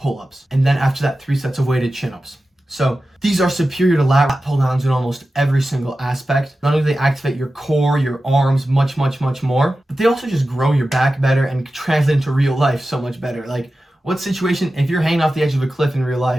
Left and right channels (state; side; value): normal; both; correlation 0.94